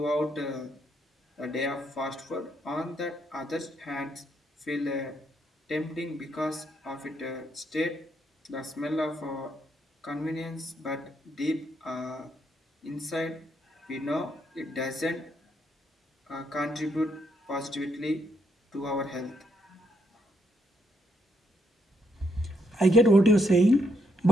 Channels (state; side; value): normal; both; correlation 0.76